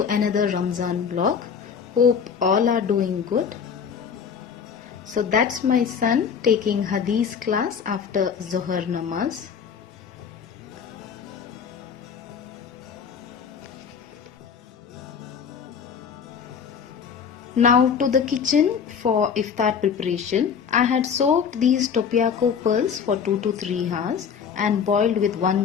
another Ramzan vlog. Hope all are doing good. So that's my son taking Hadith class after Zohar Namaz. Now to the kitchen for iftar preparation. I had soaked these topiaco pearls for 2 to 3 hours and boiled with 1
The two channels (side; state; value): right; quieter; 6.9 dB